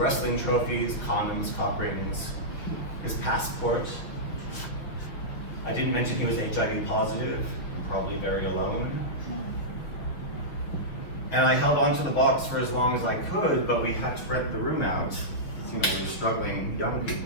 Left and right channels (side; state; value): right; late; 6.1 ms